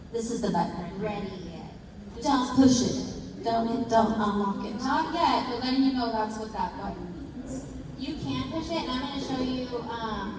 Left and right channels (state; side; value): identical; both; correlation 1.00